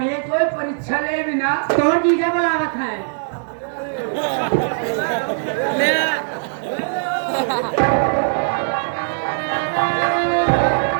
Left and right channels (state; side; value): silent; left; digital silence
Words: कोई परीक्षा ले भी ना। तो जीजा बुलावत है।